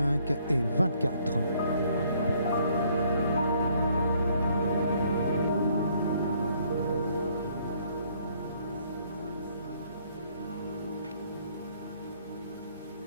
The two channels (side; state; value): both; inverted; correlation -0.65